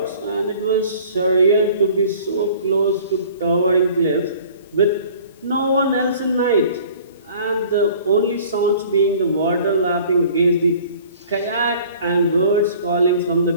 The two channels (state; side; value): inverted; both; correlation -0.50